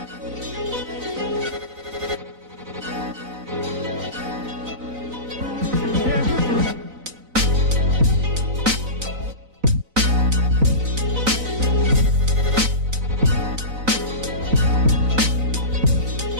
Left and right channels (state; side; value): late; left; 4.0 ms